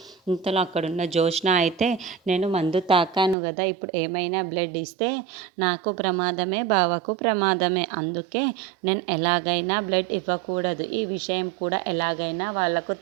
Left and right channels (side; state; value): left; drops out; at 3.4 s